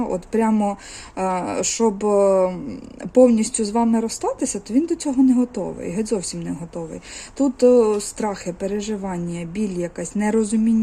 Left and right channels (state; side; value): identical; both; correlation 1.00